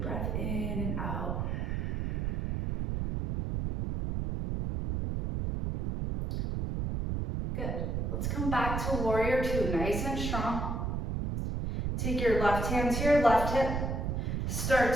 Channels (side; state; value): right; noise; rumble, 1 dB below the sound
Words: breath in and out. Good. Let's come back to warrior two, nice and strong. Take your left hand to your left hip. Start